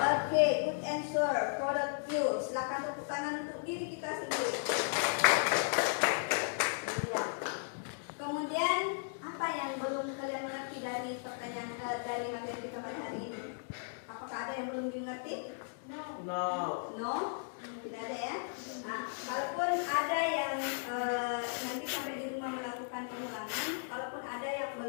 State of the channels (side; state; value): right; silent; digital silence